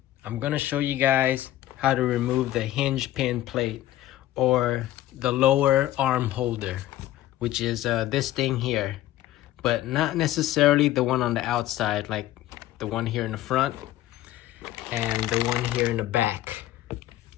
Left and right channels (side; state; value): right; quieter; 14.2 dB